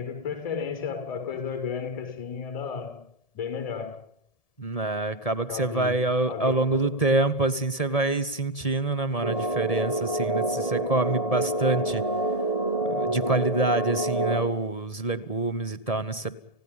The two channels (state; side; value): late; right; 1.7 ms